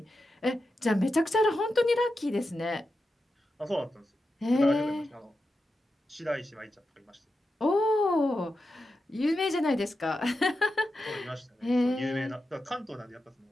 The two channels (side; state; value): both; normal; correlation 0.89